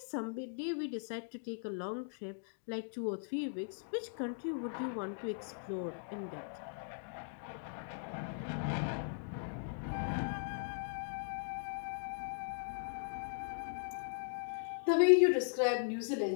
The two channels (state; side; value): silent; right; digital silence